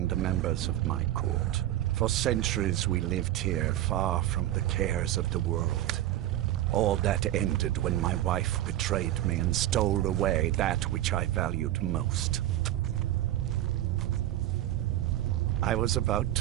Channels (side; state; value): left; quieter; 13.6 dB